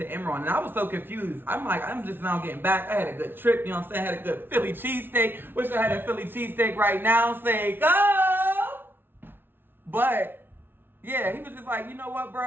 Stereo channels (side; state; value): left; late; 0.10 ms